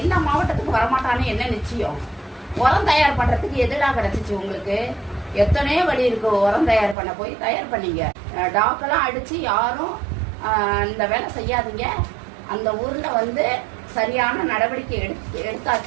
எல்லா மாவட்டத்துக்கும் வரமாட்டான்னு என்ன நிச்சயம்? உரம் தயார் பண்றதுக்கு எதுடா கிடைச்சிச்சு உங்களுக்கு? எத்தனையோ வழி இருக்கு உரம் தயார் பண்ண. போய் தயார் பண்ணீங்க. டாக்கெல்லாம் அடிச்சு யாரும் இந்த வேலை செய்யாதீங்க. அந்த ஊர்ல சரியான நடவடிக்கை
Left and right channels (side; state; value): left; drops out; at 7.0 s